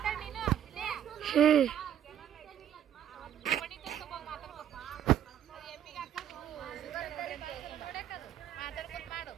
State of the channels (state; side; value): quieter; left; 10.3 dB